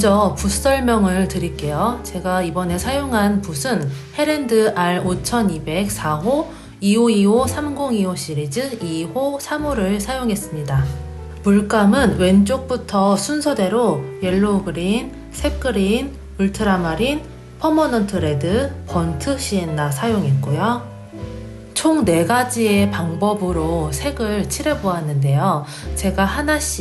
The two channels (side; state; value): both; identical; correlation 1.00